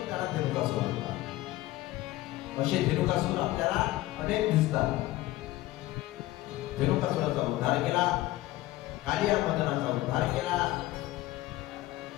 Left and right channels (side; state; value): right; quieter; 16.8 dB